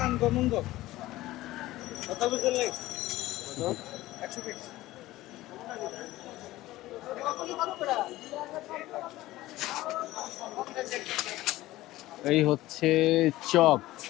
আনগমঙ্গ কত বছর লাগে 100 পিস এই হচ্ছে চপ।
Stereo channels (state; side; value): quieter; right; 16.9 dB